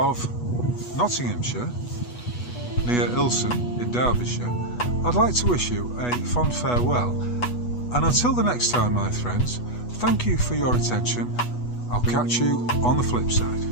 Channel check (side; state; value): right; late; 8.2 ms